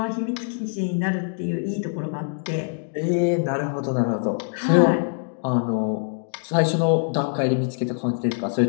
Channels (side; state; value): right; silent; digital silence